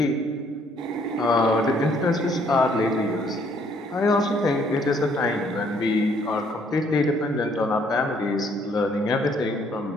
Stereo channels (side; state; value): both; normal; correlation 0.65